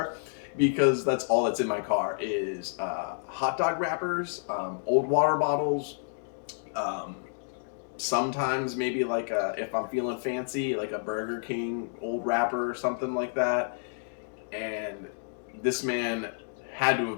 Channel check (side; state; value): right; silent; 58 dB below the other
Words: because that's all that's in my car is hot dog wrappers, old water bottles, sometimes maybe like if I'm feeling fancy, like a Burger King old wrapper or something like that. And this man had to